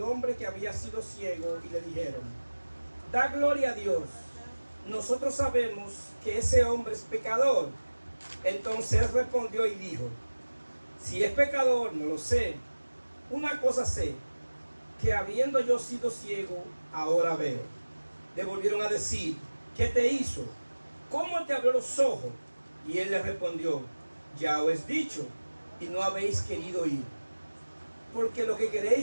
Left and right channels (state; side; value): inverted; both; correlation -1.00